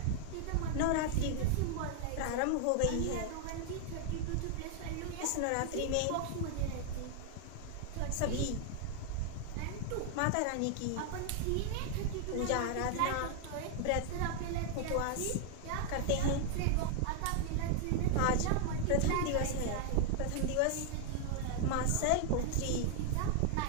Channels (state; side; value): different; both; correlation 0.00